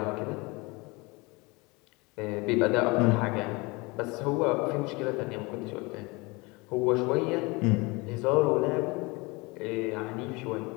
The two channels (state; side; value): quieter; right; 25.6 dB